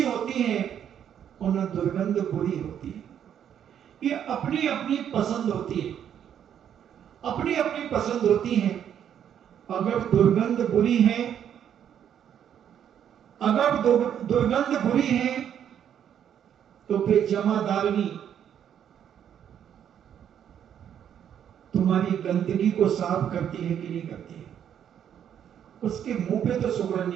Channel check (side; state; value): left; quieter; 9.3 dB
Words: होती है और न दुर्गंध बुरी होती है। ये अपनी अपनी पसंद होती है, अपनी अपनी पसंद होती है। अगर दुर्गंध बुरी है, अगर दुर्गंध बुरी है तो फिर जमादारनी तुम्हारी गंदगी को साफ करती है कि नहीं करती है? उसके मुंह पे तो सुगंध